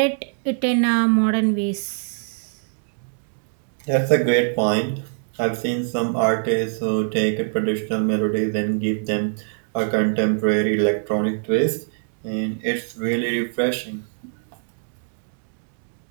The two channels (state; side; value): silent; left; 63 dB below the other